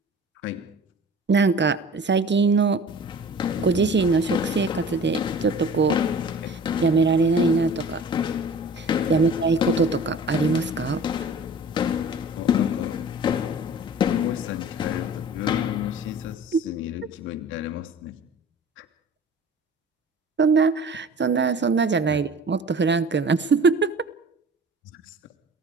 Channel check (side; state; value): both; normal; correlation 0.43